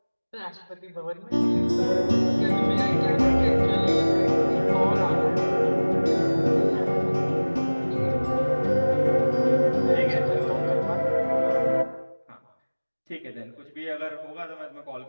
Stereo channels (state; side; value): inverted; both; correlation -1.00